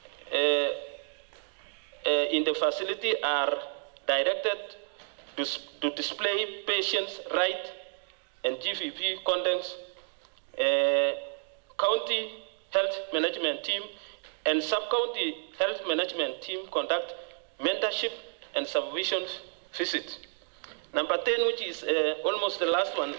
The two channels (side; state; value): left; silent; digital silence